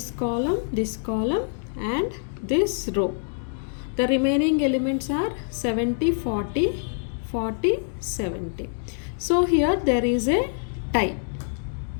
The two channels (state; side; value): silent; right; digital silence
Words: column and this row. The remaining elements are 70, 40, 40, 70. So here there is a tie.